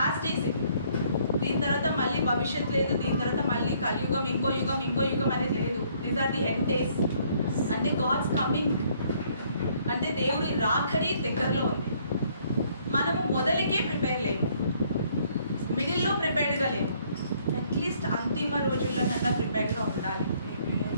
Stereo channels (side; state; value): both; inverted; correlation -0.64